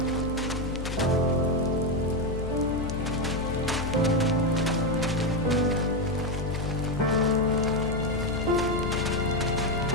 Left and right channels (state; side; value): noise; left; hum, 5 dB below the sound